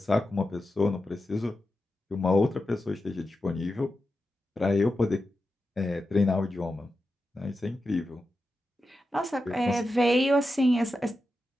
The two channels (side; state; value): both; normal; correlation 0.90